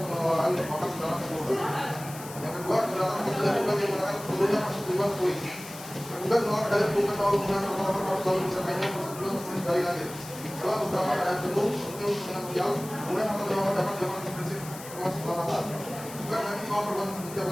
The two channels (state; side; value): noise; left; hiss, 14 dB below the sound